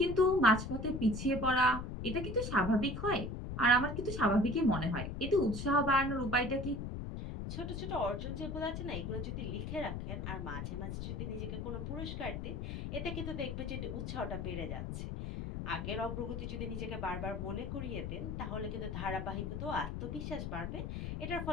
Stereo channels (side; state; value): left; noise; rumble, 5 dB below the sound